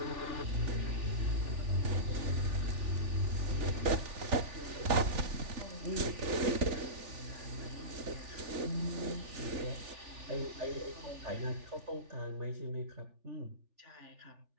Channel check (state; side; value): late; left; 3.4 ms